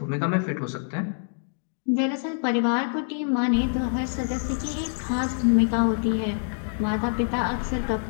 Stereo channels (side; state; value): right; silent; digital silence